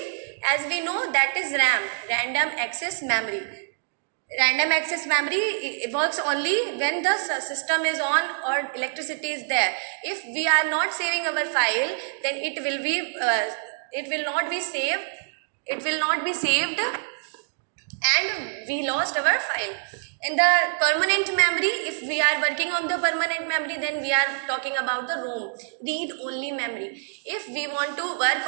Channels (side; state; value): left; silent; digital silence